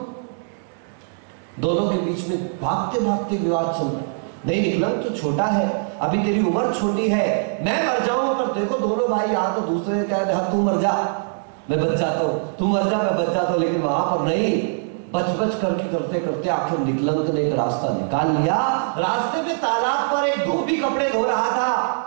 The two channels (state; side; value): silent; left; digital silence